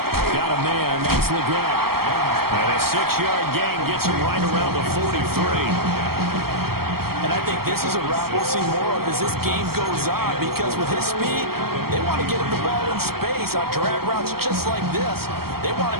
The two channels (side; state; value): left; late; 0.94 ms